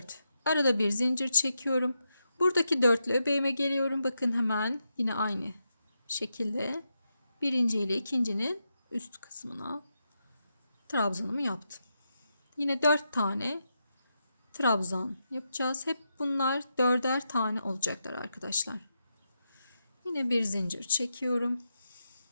Arada bir zincir çekiyorum. Buradaki dörtlü öbeğime geliyorum. Bakın hemen yine aynı şekilde birinci ile ikincinin üst kısmına trabzanımı yaptım. Yine 4 tane trabzan yapacağız. Hep bunlar 4'er tane olacaklar arkadaşlar. Yine bir zincir çekiyorum.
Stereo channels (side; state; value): both; inverted; correlation -0.85